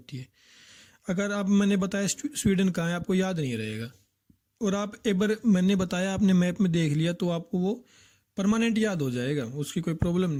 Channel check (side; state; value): both; identical; correlation 1.00